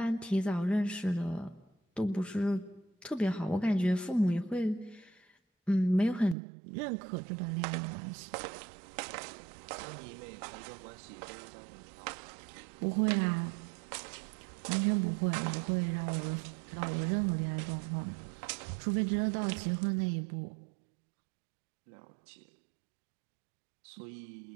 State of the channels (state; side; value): drops out; left; at 6.4 s